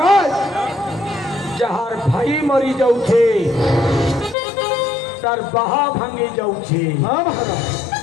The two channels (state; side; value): drops out; right; at 4.4 s